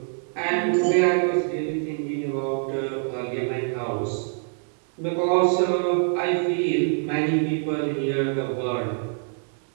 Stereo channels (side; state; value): left; silent; 62 dB below the other